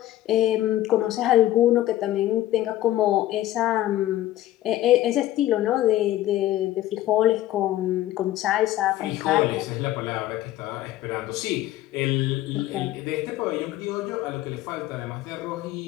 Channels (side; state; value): right; quieter; 14.4 dB